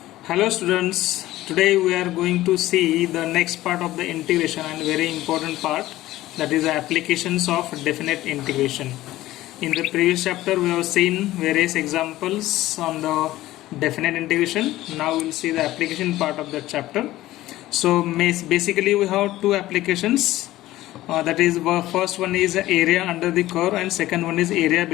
Hello students, today we are going to see the next part of the integration and very important part, that is the applications of definite integration. In the previous chapter we have seen various examples on the definite integration. Now we will see the application part of that chapter. So basically we have two applications, that is first one is area under the curve and second one is area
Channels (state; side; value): quieter; right; 16.0 dB